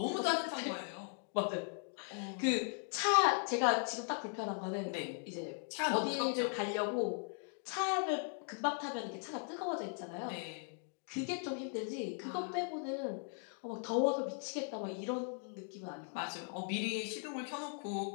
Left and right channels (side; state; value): right; silent; 52 dB below the other